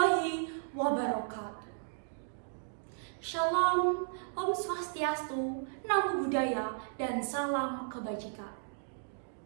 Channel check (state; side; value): silent; left; digital silence